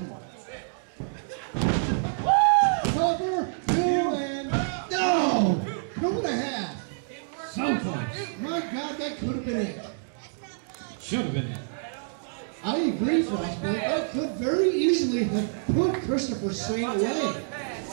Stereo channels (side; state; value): left; silent; digital silence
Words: Cover, 2 and no! 2.5. So close. My God, that could have been it. Should have been it. I agree, Frostbite. That could very easily have put Christopher Saint away.